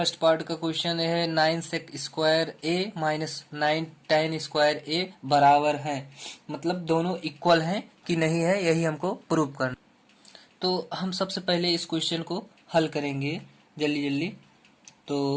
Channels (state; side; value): identical; both; correlation 1.00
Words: पार्ट का क्वेश्चन है 9 सेक square A minus 9 tan square ए बराबर है, मतलब दोनों इक्वल हैं कि नहीं है, यही हमको प्रूव करना। तो हम सबसे पहले इस क्वेश्चन को हल करेंगे जल्दी जल्दी।